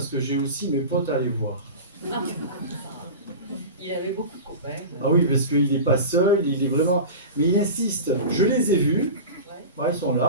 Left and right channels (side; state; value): both; inverted; correlation -0.30